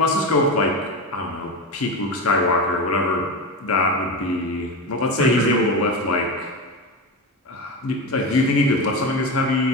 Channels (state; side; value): normal; both; correlation 0.21